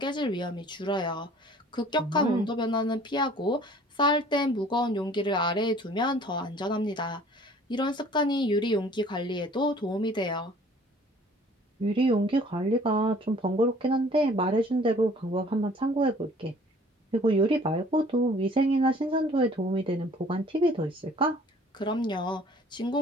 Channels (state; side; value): normal; both; correlation 0.52